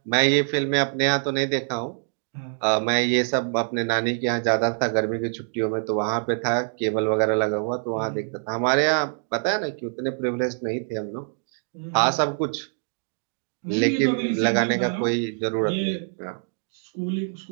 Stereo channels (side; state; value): left; silent; 62 dB below the other